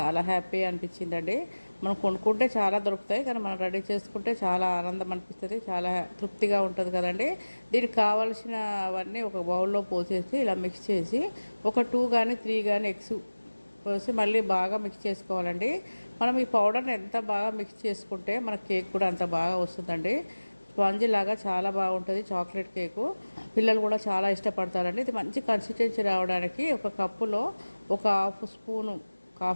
హ్యాపీ అనిపించిందండి. మనం కొనుక్కుంటే చాలా దొరుకుతాయి, కానీ మనం రెడీ చేసుకుంటే చాలా ఆనందం అనిపిస్తుంది, చాలా తృప్తిగా ఉంటుంది కదండి. దీనికి కావాల్సినవన్నీ ఒక బౌల్లో పోసేసి ఇలా మిక్స్ చేసి ఒక 2 కానీ 3 కానీ ఎగ్స్ పోసి మళ్ళీ బాగా మిక్స్ చేసుకోవాలండి. మనం ఈ పౌడర్ని ఎంత బాగా మిక్స్ చేసుకుంటే మన కేక్ కూడా అంత బాగా వస్తుందండి. స్పాంజీ లాగా చాలా బాగుంటుంది చాక్లెట్ కేకు. పిల్లలు కూడా చాలా ఇష్టపడతారండి. ఇది మంచి కన్సిస్టెన్సీ రావడానికి ఒక కప్పులో ఒక హాఫ్ స్పూను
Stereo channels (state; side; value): inverted; both; correlation -1.00